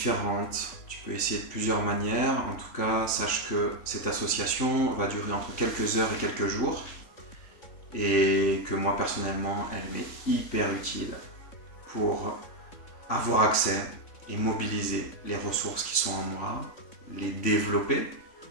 Tu peux essayer de plusieurs manières. En tout cas, sache que cette association va durer entre quelques heures et quelques jours et que moi personnellement, elle m'est hyper utile pour avoir accès et mobiliser les ressources qui sont en moi, les développer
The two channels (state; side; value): late; right; 3.6 ms